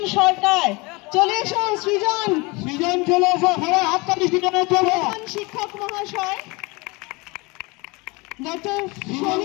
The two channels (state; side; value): quieter; right; 26.0 dB